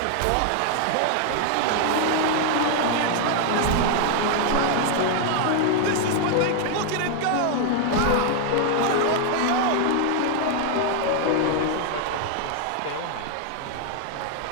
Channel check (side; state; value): both; different; correlation 0.00